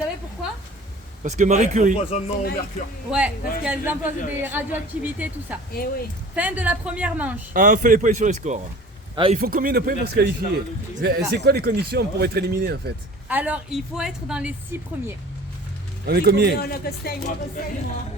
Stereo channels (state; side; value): normal; both; correlation 0.44